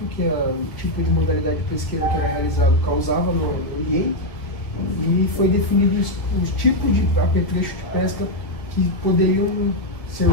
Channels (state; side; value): late; right; 1.7 ms